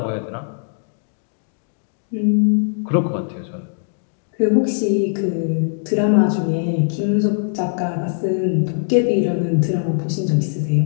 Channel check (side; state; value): right; silent; digital silence